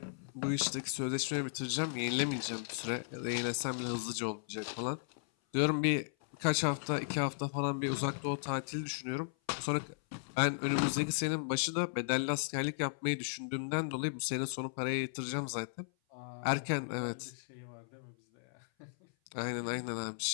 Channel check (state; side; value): silent; right; 54 dB below the other